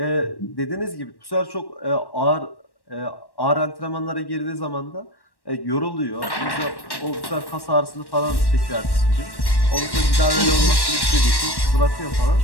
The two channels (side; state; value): right; late; 1.1 ms